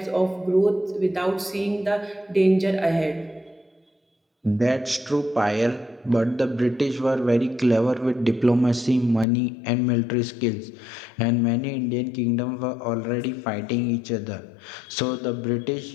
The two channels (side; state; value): right; drops out; at 9.2 s